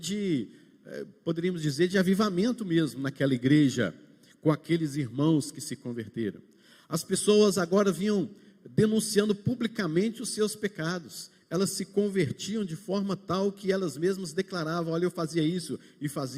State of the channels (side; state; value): both; identical; correlation 1.00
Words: poderíamos dizer, de avivamento mesmo naquela igreja, com aqueles irmãos que se converteram. As pessoas agora vinham denunciando publicamente os seus pecados. Elas se convertiam de forma tal que elas mesmas declaravam: olha, eu fazia isso e